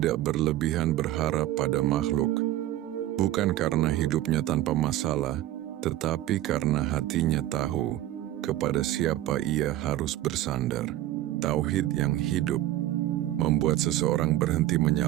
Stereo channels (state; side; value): quieter; left; 14.3 dB